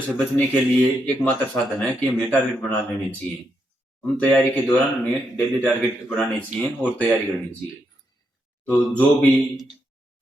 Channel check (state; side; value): normal; both; correlation 0.80